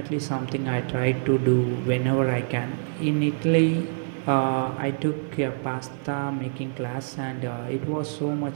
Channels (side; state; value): left; silent; 55 dB below the other